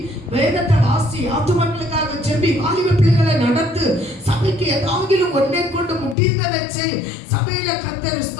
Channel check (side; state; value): right; drops out; at 6.2 s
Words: வேதத்தை வாசி, ஆத்துமக்களுக்காக ஜெபி, வாலிப பிள்ளைகளை நடத்து, சபைக்கு ஏதாவது ஒன்றை கொண்டு முடிந்ததை செய், சபையில கர்த்தர்